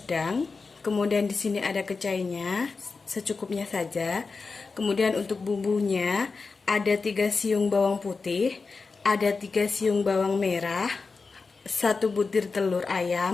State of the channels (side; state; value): right; quieter; 4.4 dB